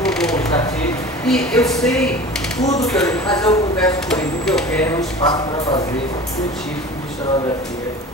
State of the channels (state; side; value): normal; both; correlation 0.38